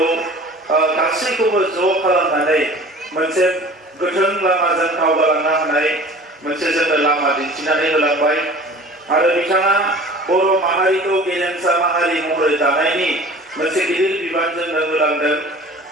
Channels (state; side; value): normal; both; correlation 0.44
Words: गासैखौबो ज' खालामनानै मोनसे गोथों लामाजों दावगालांनो हानाय मोनसे जोंनो लामा दिन्थिनानै होलांबाय आरो बिथाङा बर' माहारिखौ गेरेमसा माहारि महरै दानायनि मोनसे गिदिर बिबान जोंनो होलांदों